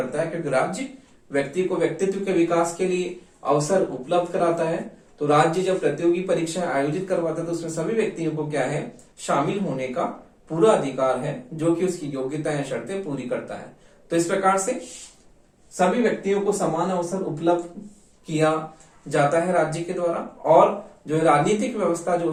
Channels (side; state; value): both; identical; correlation 1.00